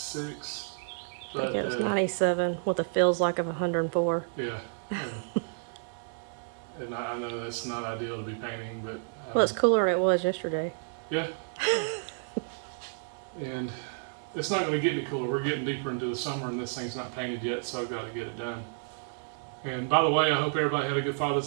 But, I think it was 97 with a feels like of 104. Yeah. And I know that's not ideal to be painting, but well, it's cooler than it was yesterday. Yeah. And it's not going to get any cooler. We're getting deeper into the summer and this thing's not painted yet, so I've got to get it done. And by the way, I hope everybody had a good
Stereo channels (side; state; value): left; silent; digital silence